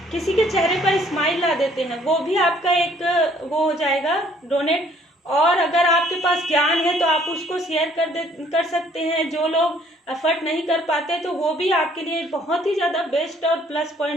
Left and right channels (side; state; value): both; normal; correlation 0.61